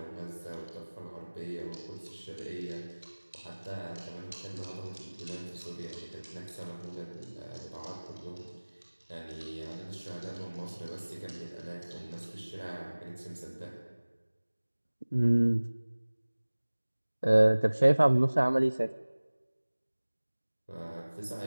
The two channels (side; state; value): both; inverted; correlation -1.00